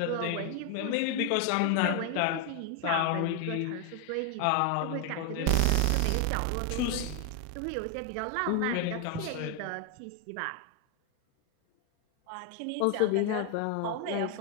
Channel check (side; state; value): both; different; correlation 0.01